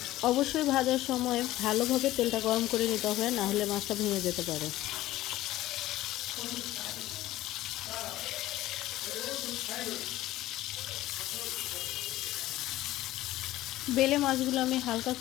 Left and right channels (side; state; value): right; quieter; 15.7 dB